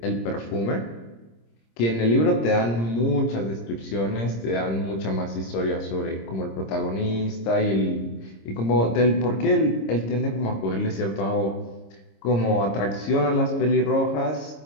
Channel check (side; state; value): right; late; 26 ms